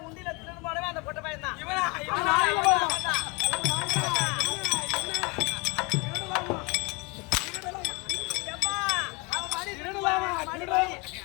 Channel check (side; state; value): right; quieter; 27.8 dB